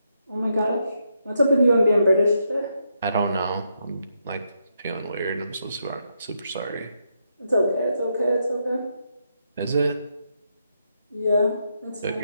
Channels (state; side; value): inverted; both; correlation -0.80